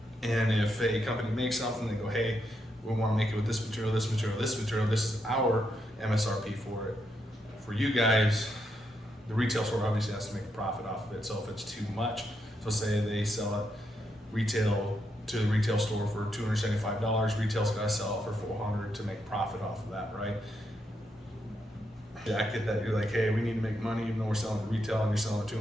And if a company makes something, they go, hey, we want to make it with this material, this material, this material. This is our MSRP for it. For you guys, the retail store obviously has to make a profit off of it. So if it's too much, so say they sell it retail to the retail store for $275, retail's got to sell it for $400 to make profit off of that, right? Jacket that you're like, hey, we need to make money, even though we're selling to retail and you're selling it to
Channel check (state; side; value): normal; both; correlation 0.81